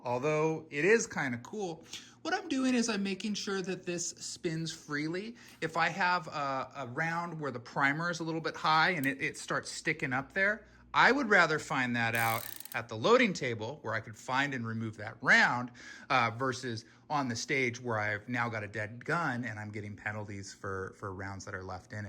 although it is kind of cool. What I'm doing is I'm making sure that this spins freely. If I have a round where the primer is a little bit high and it starts sticking up there, I would rather find that out at the loading table where I could find and remove that round versus on the stage where I've now got a dead gun and I'm getting penalties for rounds that are left in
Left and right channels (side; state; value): both; identical; correlation 1.00